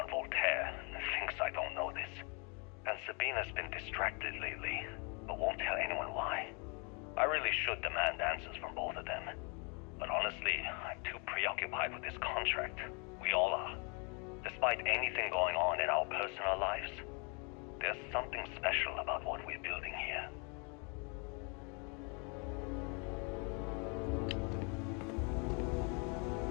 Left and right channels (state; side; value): quieter; right; 34.2 dB